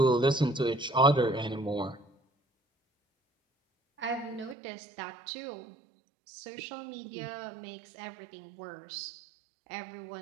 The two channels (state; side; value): drops out; left; at 4.5 s